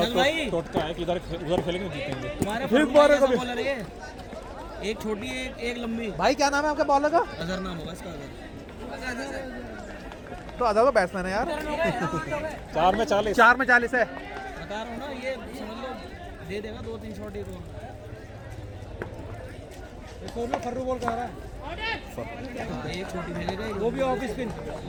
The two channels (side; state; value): both; identical; correlation 1.00